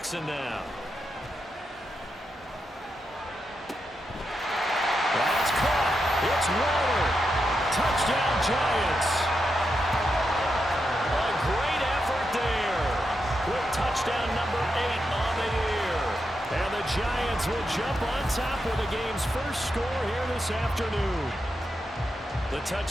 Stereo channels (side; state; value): both; normal; correlation 0.86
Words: now. That's caught. It's Waller. Touchdown Giants. A great effort there. Quick touchdown Giants will jump on top with the game's first score here this afternoon. The